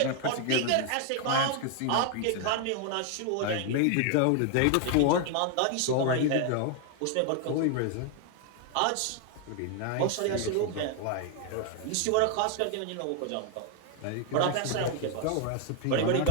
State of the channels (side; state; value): both; different; correlation 0.00